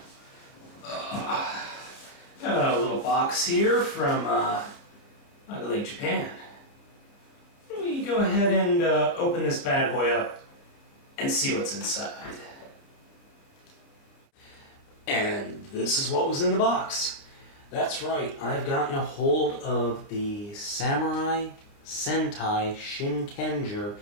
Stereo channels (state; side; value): late; right; 30 ms